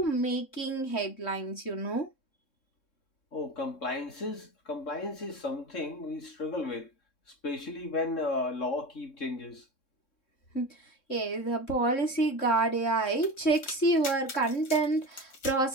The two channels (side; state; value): right; late; 3.6 ms